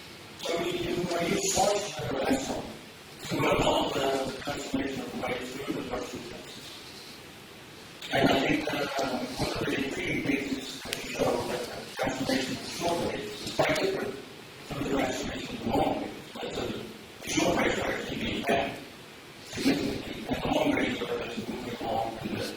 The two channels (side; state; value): both; identical; correlation 1.00